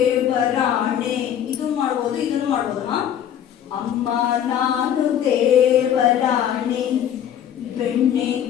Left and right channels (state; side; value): quieter; right; 9.8 dB